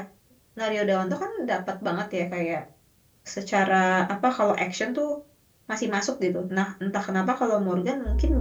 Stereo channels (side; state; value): both; identical; correlation 1.00